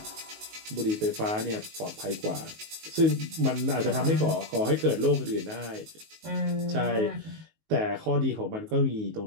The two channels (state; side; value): late; left; 19 ms